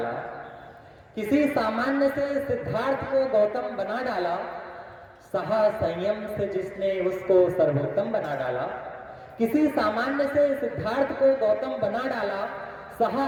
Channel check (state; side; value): identical; both; correlation 1.00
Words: किसी सामान्य से सिद्धार्थ को गौतम बना डाला, सहा संयम से जिसने उसको सर्वोत्तम बना डाला। किसी सामान्य से सिद्धार्थ को गौतम बना डाला,